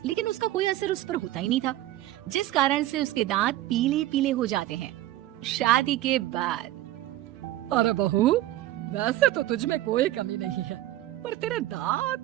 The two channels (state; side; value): quieter; left; 14.9 dB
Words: लेकिन उसका कोई असर उस पर होता ही नहीं था, जिस कारण से उसके दांत पीले पीले हो जाते हैं। शादी के बाद। अरे बहू, वैसे तो तुझ में कोई कमी नहीं है, पर तेरे